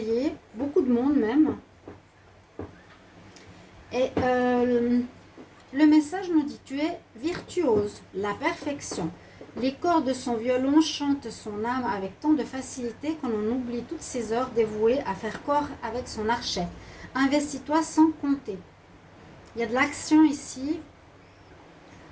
beaucoup de monde même. Et le message nous dit, tu es virtuose, la perfection. Les cordes de son violon chantent son âme avec tant de facilité qu'on en oublie toutes ses heures dévouées à faire corps avec son archet. Investis-toi sans compter. Il y a de l'action ici.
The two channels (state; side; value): identical; both; correlation 1.00